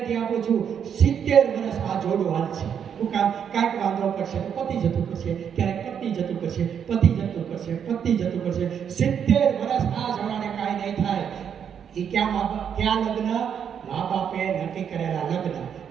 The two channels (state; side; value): quieter; left; 8.0 dB